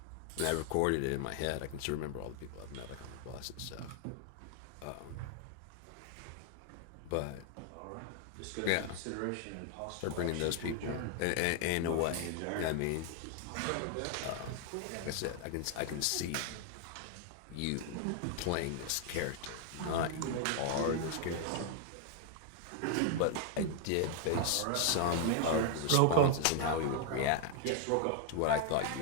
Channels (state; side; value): different; both; correlation 0.00